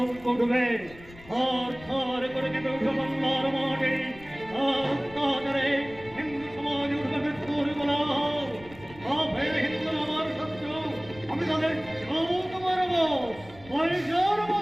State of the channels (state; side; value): noise; left; rumble, 20 dB below the sound